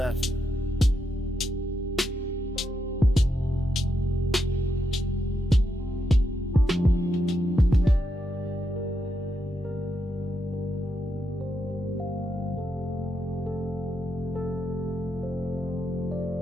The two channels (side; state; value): both; normal; correlation 0.83